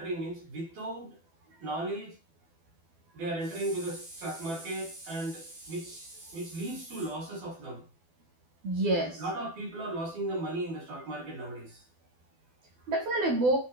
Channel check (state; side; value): late; left; 12 ms